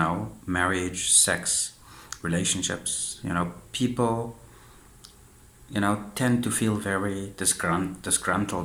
marriage, sex, relationships. People tend to feel very disgruntled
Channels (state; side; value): identical; both; correlation 1.00